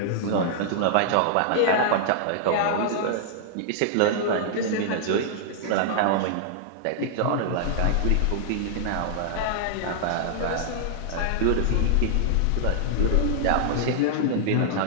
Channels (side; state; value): both; different; correlation -0.01